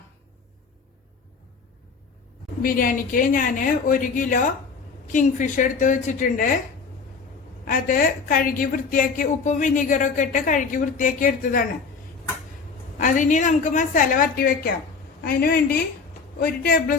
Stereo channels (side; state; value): right; quieter; 5.0 dB